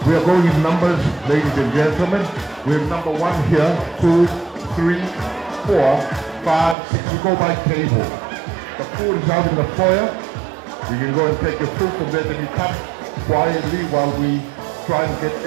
We are going in numbers, ladies and gentlemen. We have number 1 here, 2, 3, 4, 5, 6. We go by table. The food is out in the foyer. You can go and take your food from there, then you come quietly while we try and get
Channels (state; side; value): drops out; left; at 6.8 s